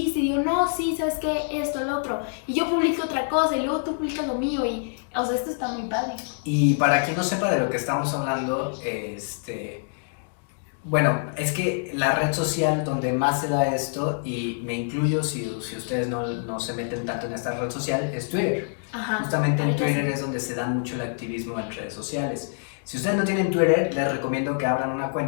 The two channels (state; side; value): silent; right; digital silence